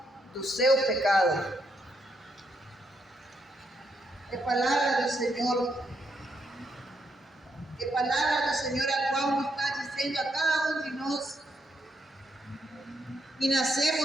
do seu pecado. Que palavra do Senhor, que palavra do Senhor, a qual nos está dizendo a cada um de nós que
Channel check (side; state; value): both; normal; correlation 0.78